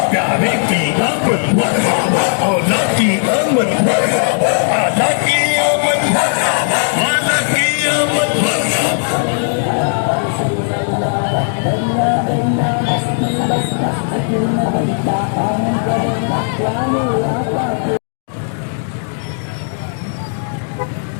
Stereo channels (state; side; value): silent; right; digital silence